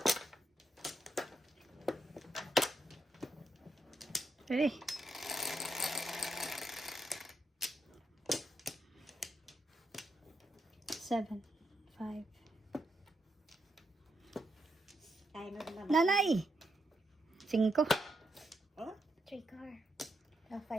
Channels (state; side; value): normal; both; correlation 0.81